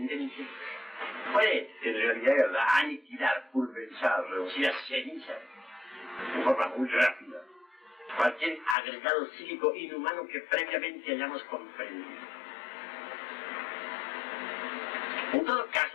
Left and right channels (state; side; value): drops out; right; at 8.8 s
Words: puede, en realidad, de verdad, aniquilar, pulverizar, reducir a ceniza, de forma muy rápida, cualquier agregado psíquico inhumano que previamente hayamos comprendido. En todo